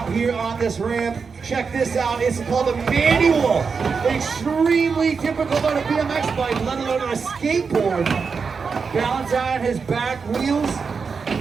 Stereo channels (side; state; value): left; quieter; 5.4 dB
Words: here on this ramp. Check this out. It's called a manual. Extremely difficult on a BMX bike, let alone on a skateboard. Balance on his back wheels,